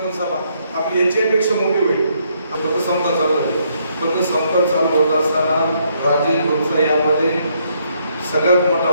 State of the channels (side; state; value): both; inverted; correlation -0.72